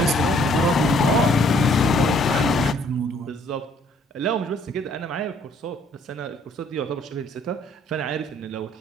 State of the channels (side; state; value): both; normal; correlation 0.62